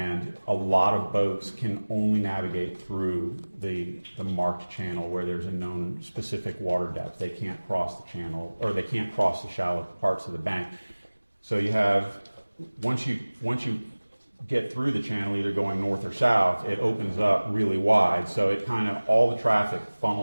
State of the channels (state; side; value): inverted; both; correlation -1.00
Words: a lot of boats can only navigate through the marked channel where there's a known specific water depth. They can't cross the channel, or they can't cross the shallow parts of the bank. So you have, once you get through the channel, either going north or south, it opens up really wide. So it kind of, all the traffic